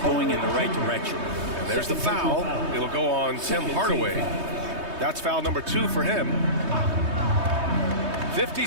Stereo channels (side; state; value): left; late; 3.2 ms